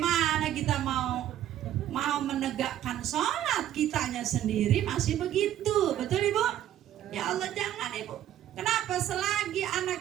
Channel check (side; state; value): left; quieter; 11.8 dB